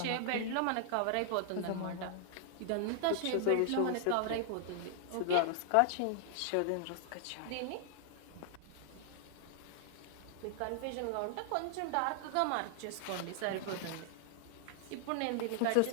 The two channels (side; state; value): both; different; correlation -0.01